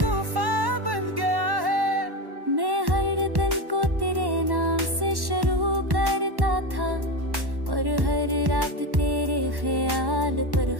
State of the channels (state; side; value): late; left; 1.1 ms